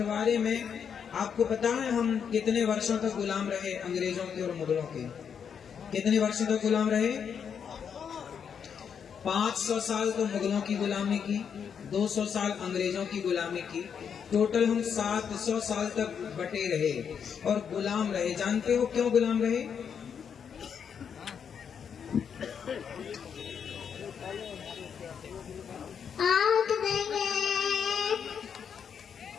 में आपको पता है हम कितने वर्षों तक गुलाम रहे अंग्रेजों के और मुगलों के? कितने वर्षों तक गुलाम रहे? 500 साल तो मुगलों की गुलामी की, 200 साल अंग्रेजों की गुलामी की, टोटल हम 700 साल तक बटे रहे और गुलाम रहे। जानते हो क्यों गुलाम रहे?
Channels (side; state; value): right; quieter; 7.3 dB